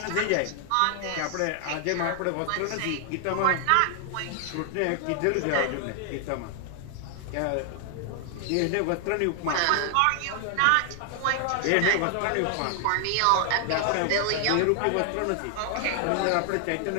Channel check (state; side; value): different; both; correlation 0.00